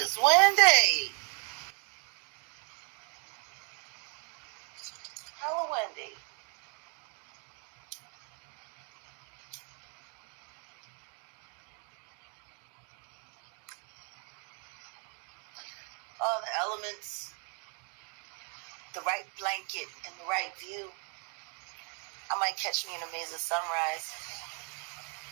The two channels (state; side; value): quieter; left; 37.7 dB